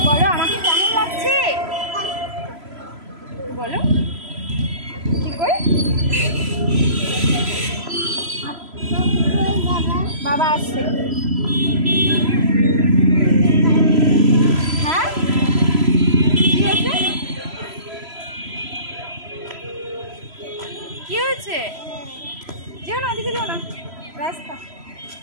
বলো আমাকে কেমন লাগছে, বলো কি করে। বাবা আসছে। হ্যাঁ কি হয়েছে, কি হয়েছে? যেও না, ওদিকে যেও না, রাস্তা।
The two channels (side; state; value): left; late; 3.0 ms